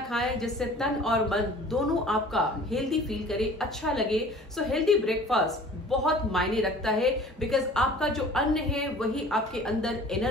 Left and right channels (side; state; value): both; normal; correlation 0.47